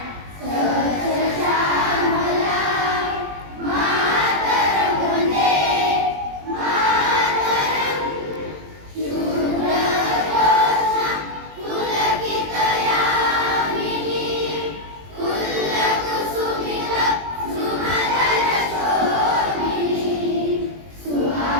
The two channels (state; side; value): late; left; 20 ms